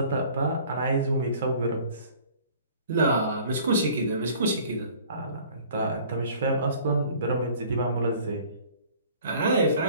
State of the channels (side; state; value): both; inverted; correlation -0.51